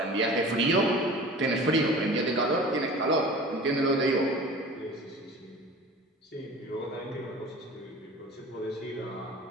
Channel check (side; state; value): both; normal; correlation 0.40